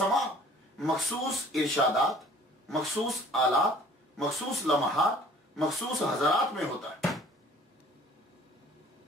مخصوص ارشادات، مخصوص آلات، مخصوص لمحات، مخصوص حضرات میں ہوتا ہے،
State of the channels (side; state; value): both; normal; correlation 0.52